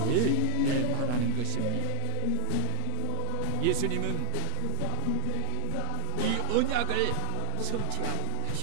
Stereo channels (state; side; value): different; both; correlation 0.01